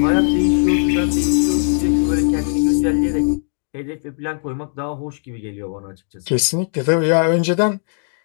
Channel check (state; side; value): silent; right; digital silence